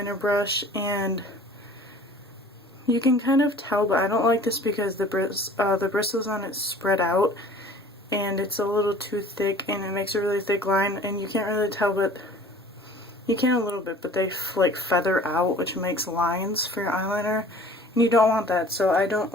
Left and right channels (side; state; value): both; normal; correlation 0.47